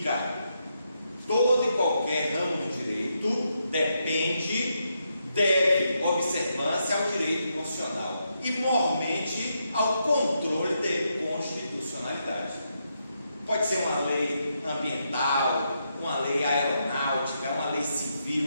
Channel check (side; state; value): both; inverted; correlation -0.81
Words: Todo e qualquer ramo do direito deve observância ao direito constitucional e, mormente, ao controle de constitucionalidade. Pode ser uma lei ambiental, uma lei aeronáutica, uma lei civil,